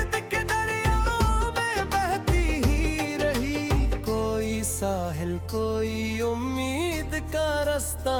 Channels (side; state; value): both; identical; correlation 1.00